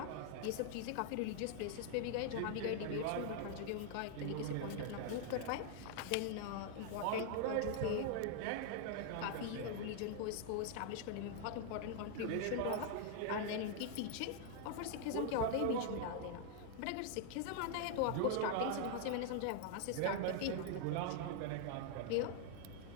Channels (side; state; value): both; different; correlation 0.00